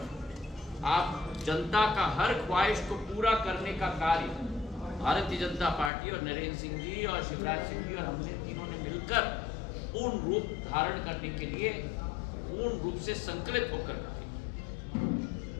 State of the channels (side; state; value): right; drops out; at 5.9 s